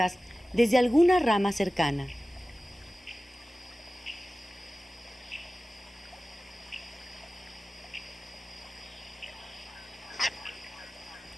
desde alguna rama cercana.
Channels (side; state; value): both; normal; correlation 0.96